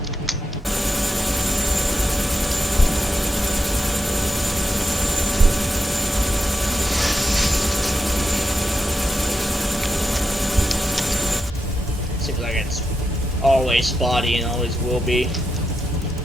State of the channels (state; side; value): normal; both; correlation 0.87